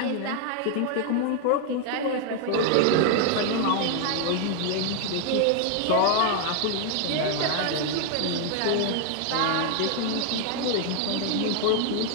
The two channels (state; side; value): different; both; correlation 0.00